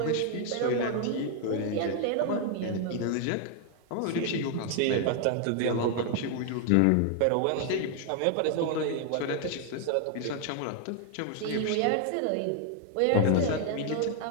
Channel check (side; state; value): both; different; correlation 0.00